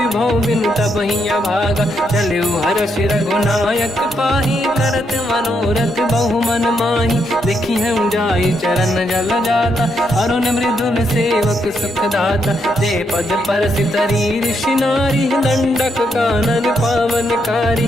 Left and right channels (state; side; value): normal; both; correlation 0.78